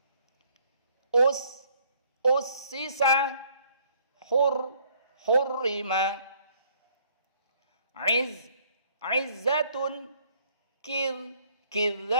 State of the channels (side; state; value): both; inverted; correlation -0.63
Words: ussisa, hurrima, izzatun,